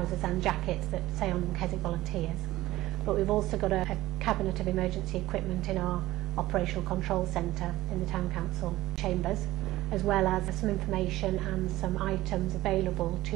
and jackets that say on them Keswick volunteers. But we've also got a cabinet of emergency equipment in our operational control centre in the town council chambers, as well as some information and some items available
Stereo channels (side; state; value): left; quieter; 16.4 dB